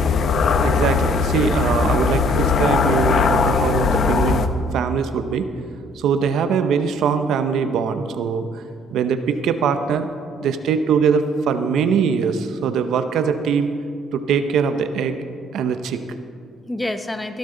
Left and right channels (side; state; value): both; normal; correlation 0.59